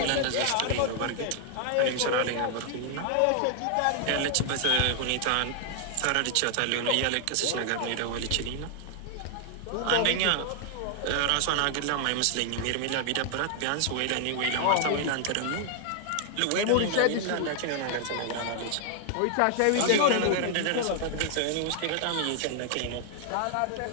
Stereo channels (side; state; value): both; different; correlation 0.00